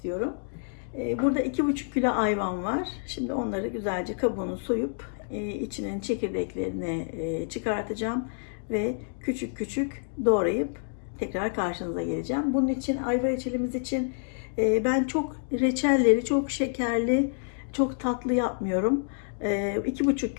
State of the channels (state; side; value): silent; right; digital silence